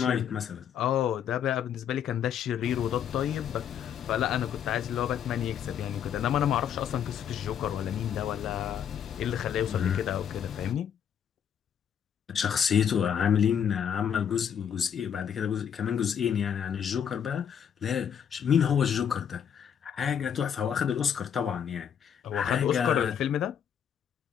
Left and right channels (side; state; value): right; quieter; 8.5 dB